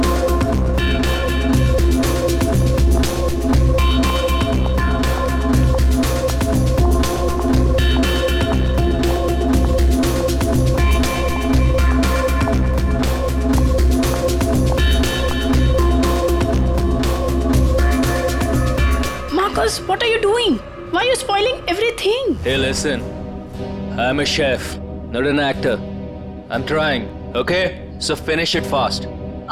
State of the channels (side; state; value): both; identical; correlation 1.00